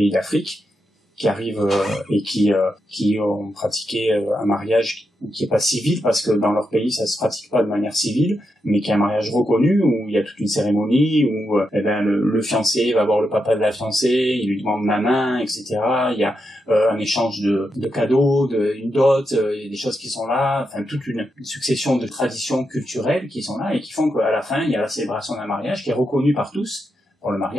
d'Afrique, qui arrivent et qui ont pratiqué un mariage qui est pas civil, parce que dans leur pays ça se pratique pas de manière civile, mais qui est un mariage reconnu, où il y a toute une cérémonie, où le fiancé va voir le papa de la fiancée, il lui demande la main, etc. Il y a un échange de cadeaux, une dot, il y a des choses qui sont là, enfin toute une succession de traditions culturelles qui sont là et qui font qu'à la fin il y a la célébration d'un mariage qui est reconnu par tous. Pour le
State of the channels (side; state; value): both; normal; correlation 0.85